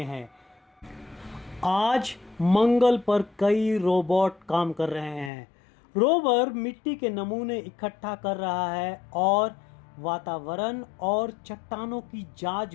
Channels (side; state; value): right; drops out; at 5.3 s